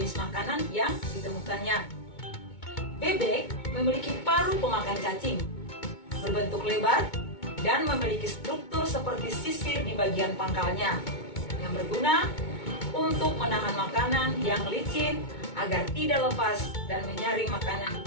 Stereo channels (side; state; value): right; late; 2.2 ms